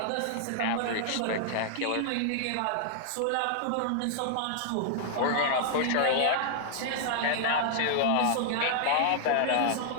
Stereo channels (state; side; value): different; both; correlation -0.01